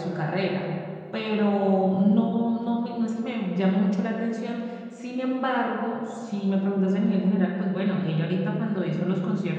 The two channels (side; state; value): both; identical; correlation 1.00